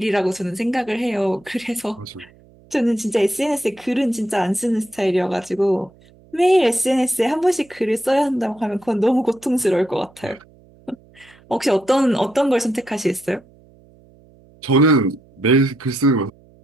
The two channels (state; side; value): noise; right; hum, 28 dB below the sound